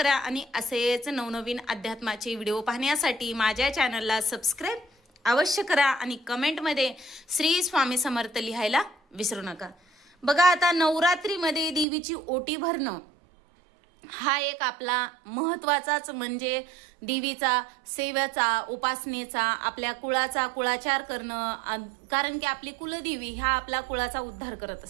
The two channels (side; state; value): left; drops out; at 11.9 s